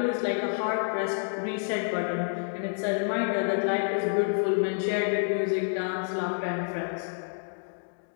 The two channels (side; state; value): right; silent; digital silence